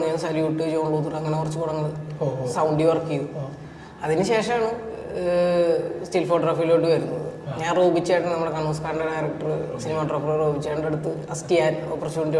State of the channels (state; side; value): identical; both; correlation 1.00